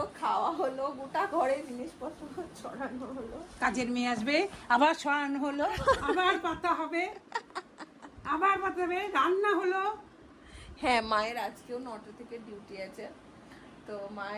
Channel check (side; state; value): both; identical; correlation 1.00